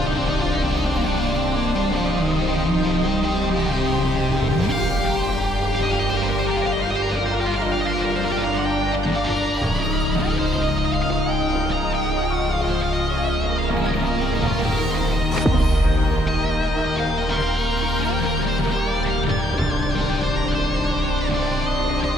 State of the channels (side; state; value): both; normal; correlation 0.70